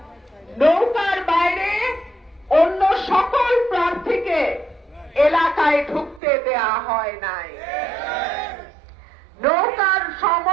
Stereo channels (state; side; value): drops out; left; at 6.2 s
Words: নৌকার বাইরে অন্য সকল প্রার্থীকে এলাকায় ঢুকতে দেয়া হয় নাই। নৌকার